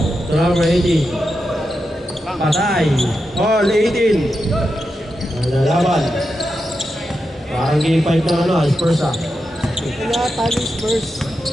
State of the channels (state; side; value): normal; both; correlation 0.88